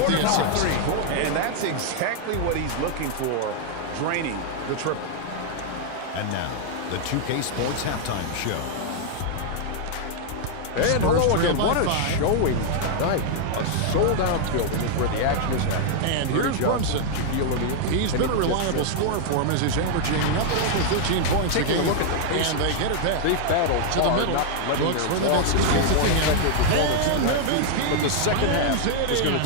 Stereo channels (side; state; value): both; different; correlation 0.00